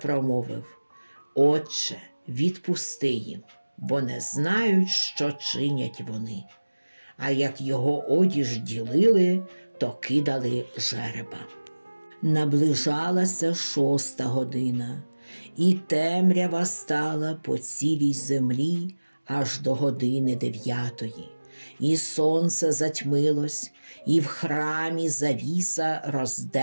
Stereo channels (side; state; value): both; inverted; correlation -1.00